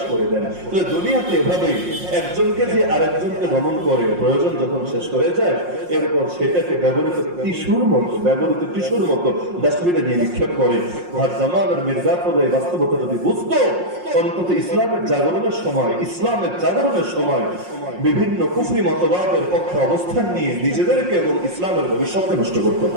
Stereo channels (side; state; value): left; late; 5.6 ms